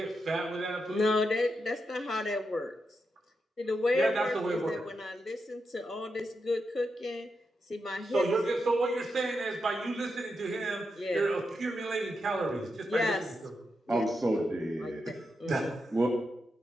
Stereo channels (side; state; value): both; normal; correlation 0.86